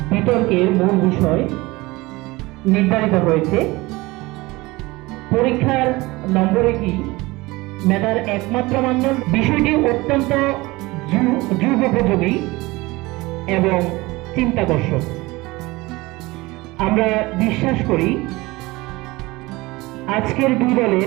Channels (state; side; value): quieter; left; 21.5 dB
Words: বিতর্কের মূল বিষয় নির্ধারিত হয়েছে পরীক্ষার নম্বরে কি মেধার একমাত্র মানদণ্ড। বিষয়টি অত্যন্ত যুগোপযোগী এবং চিন্তাকর্ষক। আমরা বিশ্বাস করি আজকের দুই